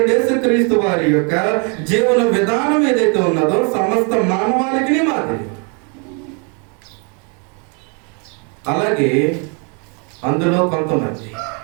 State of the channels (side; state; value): left; quieter; 36.4 dB